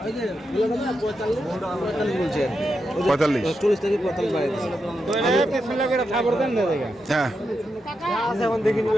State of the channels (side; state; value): both; normal; correlation 0.86